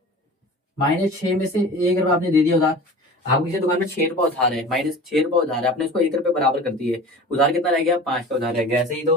-6 में से 1 रुपया आपने दे दिया उधार, आपको किसी दुकान में 6 रुपया उधार है, -6 रुपया उधार है, आपने उसको 1 रुपये बराबर कर दिए, उधार कितना रह गया, 5 का उधार रह गया, ऐसे ही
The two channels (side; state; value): both; normal; correlation 0.38